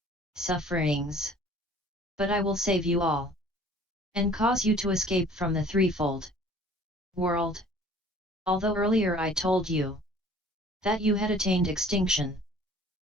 sufferings. But I will save you all, and cause you to escape from the threefold world. Although earlier I told you that you had attained extinction,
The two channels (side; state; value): both; normal; correlation 0.51